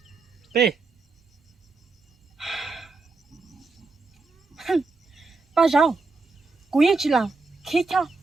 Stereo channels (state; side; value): quieter; left; 3.8 dB